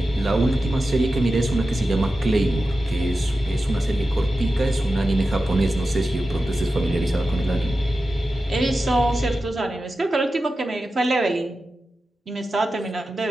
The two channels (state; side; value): normal; both; correlation 0.92